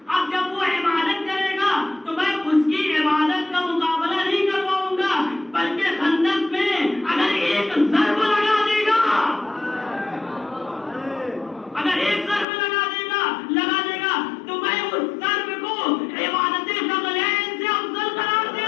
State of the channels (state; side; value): drops out; right; at 12.5 s